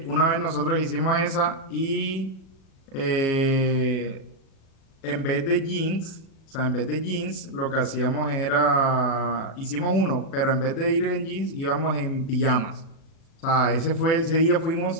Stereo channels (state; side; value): late; right; 37 ms